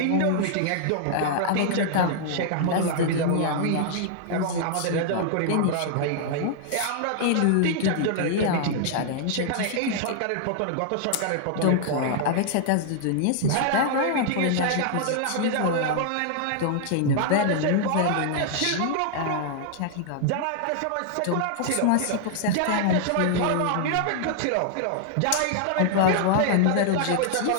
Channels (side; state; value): both; different; correlation -0.01